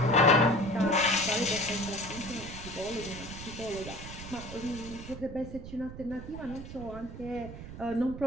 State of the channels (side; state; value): right; noise; rumble, 11 dB below the sound